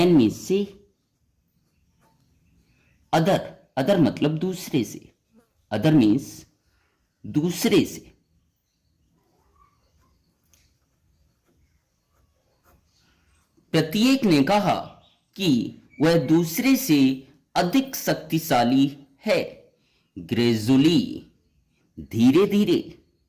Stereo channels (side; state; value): both; identical; correlation 1.00